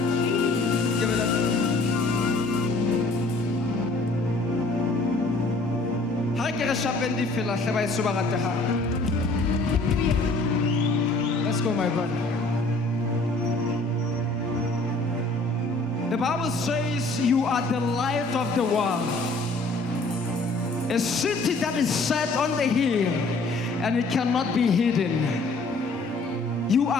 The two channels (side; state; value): right; quieter; 3.1 dB